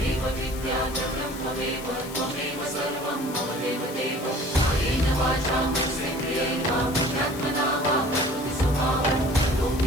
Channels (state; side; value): noise; left; hiss, 14 dB below the sound